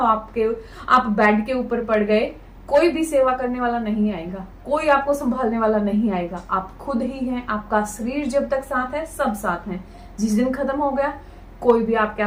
बेड के ऊपर पड़ गए, कोई भी सेवा करने वाला नहीं आएगा, कोई आपको संभालने वाला नहीं आएगा। आप खुद ही हैं। आपका शरीर जब तक साथ है, सब साथ हैं। जिस दिन खत्म हो गया, कोई भी आपके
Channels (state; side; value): identical; both; correlation 1.00